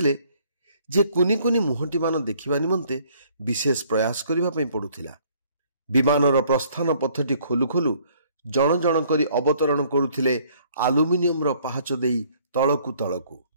ଯେ କୁନି କୁନି ମୁହଁଟିମାନ ଦେଖିବା ନିମନ୍ତେ ବିଶେଷ ପ୍ରୟାସ କରିବା ପାଇଁ ପଡୁଥିଲା। ବିମାନର ପ୍ରସ୍ଥାନ ପଥଟି ଖୋଲୁ ଖୋଲୁ ଜଣ ଜଣ କରି ଅବତରଣ କରୁଥିଲେ ଆଲୁମିନିୟମର ପାହାଚ ଦେଇ ତଳକୁ ତଳକୁ।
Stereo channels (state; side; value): inverted; both; correlation -0.61